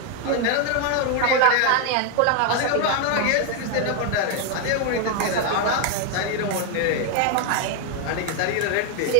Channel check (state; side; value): different; both; correlation 0.01